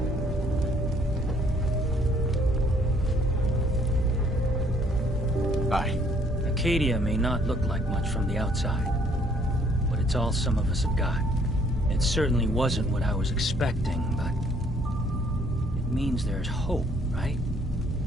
Bye. Acadia may not look like much from the outside, but it's all some of us have got. It certainly wasn't what I was expecting, but it means there's hope, right?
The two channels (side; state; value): both; normal; correlation 0.63